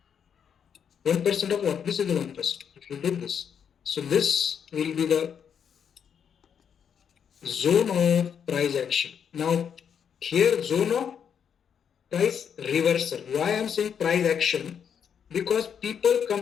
1% of what? This is the 1%. If you did this. So this will be the zone of price action. Now here zone of price reversal. Why I am saying price action? Because people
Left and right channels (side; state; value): right; quieter; 7.7 dB